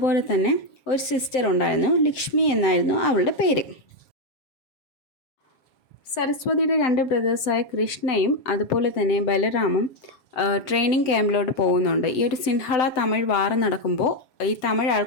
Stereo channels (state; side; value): late; right; 7.4 ms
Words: തന്നെ ഒരു സിസ്റ്റർ ഉണ്ടായിരുന്നു. ലക്ഷ്മി എന്നായിരുന്നു അവളുടെ പേര്. സരസ്വതിയുടെ 2 ബ്രദേഴ്സായ കൃഷ്ണയും അതുപോലെ തന്നെ ബലറാമും ട്രെയിനിങ് ക്യാമ്പിലോട്ട് പോകുന്നുണ്ട്. ഈ ഒരു സിൻഹള തമിഴ് വാർ നടക്കുമ്പോൾ ഈ തമിഴ്